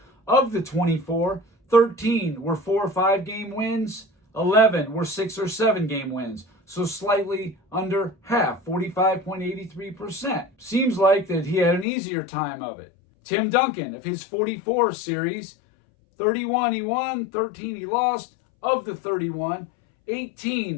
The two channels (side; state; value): right; drops out; at 11.9 s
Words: Of the 24, 13 were 4 or 5 game wins, 11 were 6 or 7 game wins. So slightly under half, 45.83%. Seems like that he had an easier time of it. Tim Duncan, of his 44 series, 31 he won, 13 he lost. Of the 31,